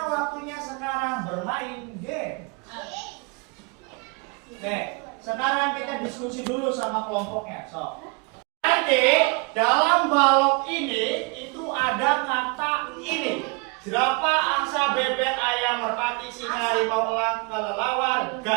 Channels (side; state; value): left; quieter; 31.9 dB